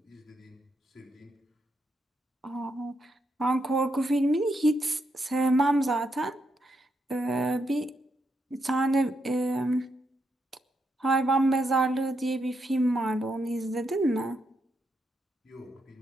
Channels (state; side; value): normal; both; correlation 0.80